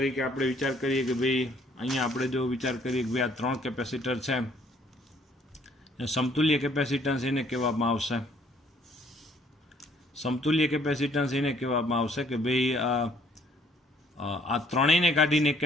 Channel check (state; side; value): normal; both; correlation 0.63